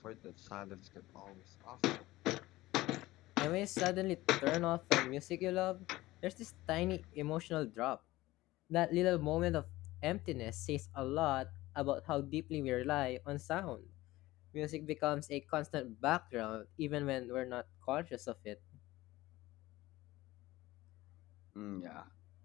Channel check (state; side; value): quieter; right; 18.0 dB